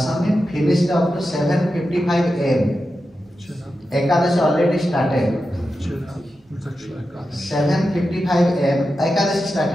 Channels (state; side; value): normal; both; correlation 0.91